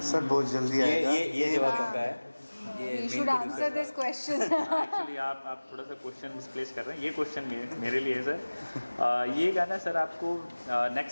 सर बहुत जल्दी आएगा। ये जवाब उनका है। You should answer this question. Actually आप थोड़ा सा क्वेश्चन मिसप्लेस कर रहे हैं, ये क्वेश्चन मेरे लिए है सर। ये गाना सर आपको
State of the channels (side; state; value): both; inverted; correlation -1.00